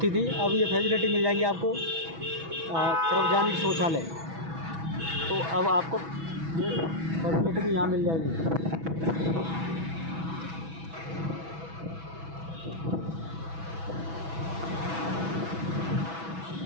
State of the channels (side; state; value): left; late; 6.1 ms